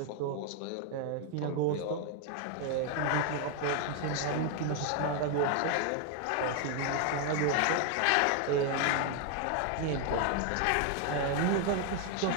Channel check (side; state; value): both; different; correlation 0.01